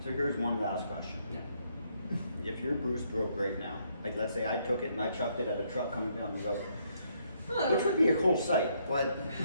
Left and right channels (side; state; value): both; inverted; correlation -0.72